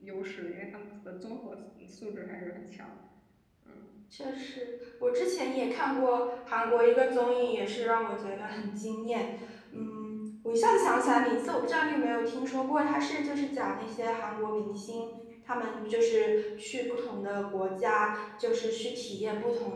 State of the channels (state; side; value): identical; both; correlation 1.00